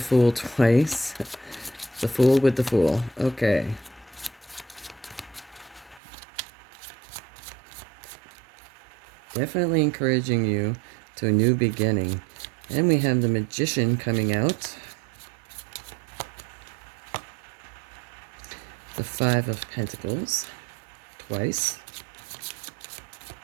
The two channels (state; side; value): drops out; left; at 6.0 s